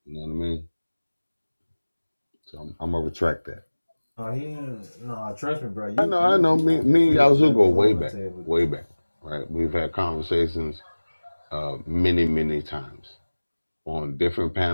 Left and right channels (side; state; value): both; inverted; correlation -1.00